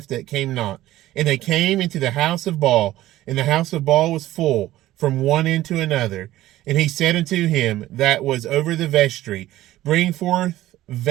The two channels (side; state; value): left; quieter; 15.1 dB